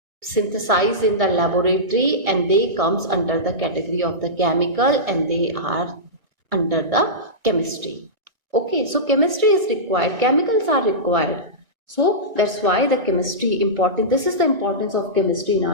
synthesized in the laboratory, and they comes under the category of the chemical, and they are under the chemistry. Okay, so chemistry is required, chemicals are required. So that's why the chemistry important. This is the importance of chemistry in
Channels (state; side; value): late; left; 2.1 ms